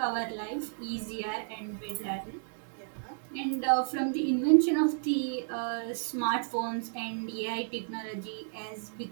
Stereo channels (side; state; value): left; silent; digital silence